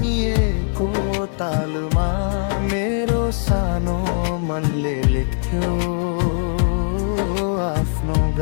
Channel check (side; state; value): right; silent; digital silence